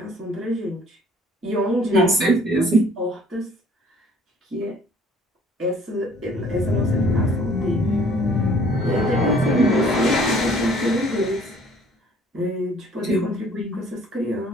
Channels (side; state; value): both; normal; correlation 0.56